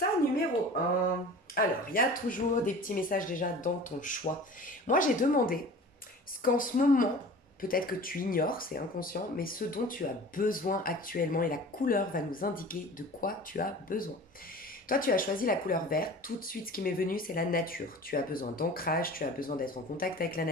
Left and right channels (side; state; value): both; normal; correlation 0.40